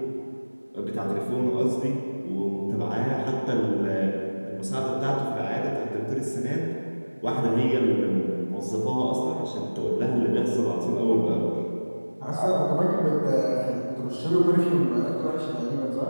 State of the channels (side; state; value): both; inverted; correlation -1.00